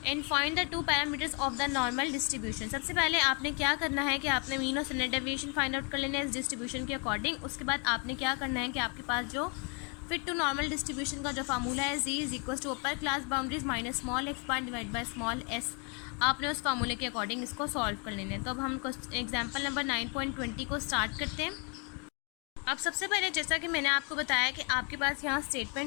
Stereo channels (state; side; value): quieter; right; 35.7 dB